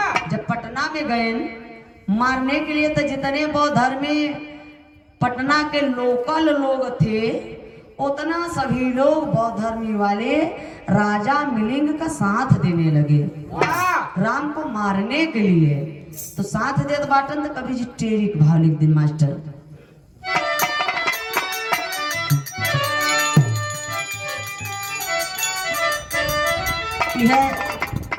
जब पटना में गए मारने के लिए तो जितने बौद्ध धर्मी पटना के लोकल लोग थे उतना सभी लोग बौद्ध धर्मी वाले राजा मिलिंग का साथ देने लगे राम को मारने के लिए। तो साथ देत बाटन तो कभी जी टेरिक भाव लिख दिन मास्टर। यह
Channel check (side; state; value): both; identical; correlation 1.00